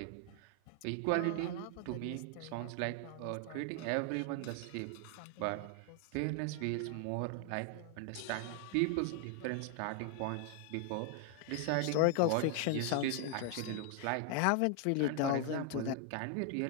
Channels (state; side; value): different; both; correlation 0.00